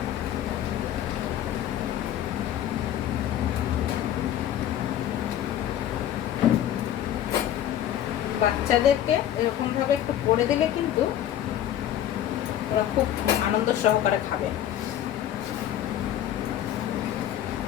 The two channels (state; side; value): quieter; right; 11.3 dB